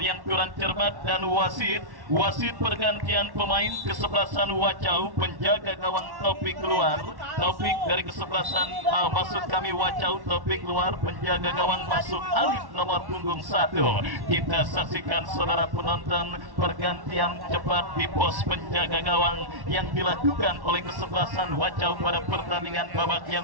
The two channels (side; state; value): left; late; 1.1 ms